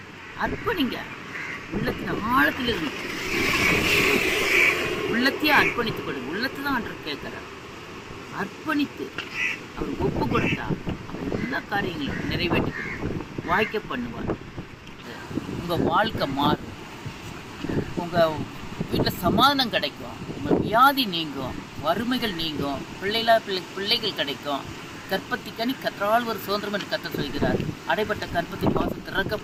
உள்ளத்தின் ஆழத்தில் இருந்து உள்ளத்தையே அர்ப்பணித்துக் கொடுங்க. உள்ளத்தை தான் ஆண்டவர் கேட்கிறார். அர்ப்பணித்து அவர் ஒப்பு கொடுத்தா அவர் எல்லா காரியங்களையும் நிறைவேற்றி கொடுப்பார், வாய்க்க பண்ணுவார். உங்கள் வாழ்க்கை மாறும். உங்கள் வீட்டில் சமாதானம் கிடைக்கும். உங்கள் வியாதி நீங்கும், வறுமைகள் நீங்கும், பிள்ளைகள் கிடைக்கும். கற்பத்திக்கனி கற்றால் ஒரு சுதந்திரம் என்று கர்த்தர் சொல்கிறார். அடைப்பட்ட கற்பத்தின் வாசல்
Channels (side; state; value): both; identical; correlation 1.00